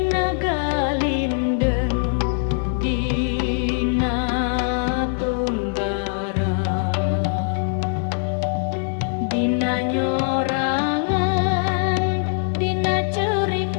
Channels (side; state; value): right; silent; digital silence